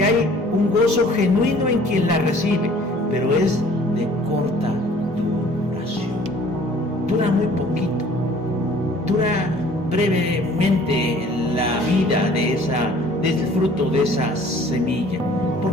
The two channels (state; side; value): normal; both; correlation 0.53